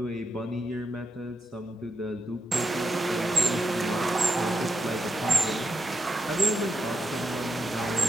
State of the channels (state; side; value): normal; both; correlation 0.86